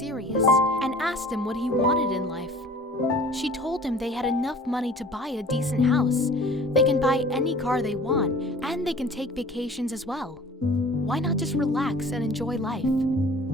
and asked him what he wanted in life. She told him they had enough money to buy a decent house. They can buy any car they want, and they can take vacations as well. Why not just relax and enjoy life?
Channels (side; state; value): both; normal; correlation 0.46